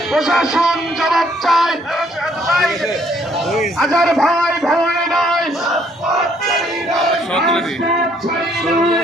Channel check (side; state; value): both; normal; correlation 0.66